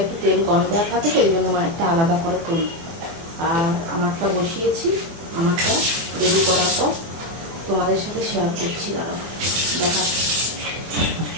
একটু তেল কম দেওয়া থাকে, তো এই জন্য মায়েরটা আলাদা করে করি। আর আমারটা বসিয়েছি, আমারটা রেডি করার পর তোমাদের সাথে শেয়ার করছি, দাঁড়াও দেখাচ্ছি।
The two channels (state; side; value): late; left; 24 ms